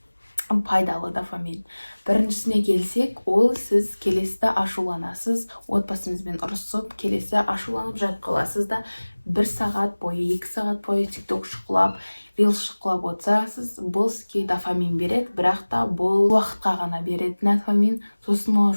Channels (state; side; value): inverted; both; correlation -1.00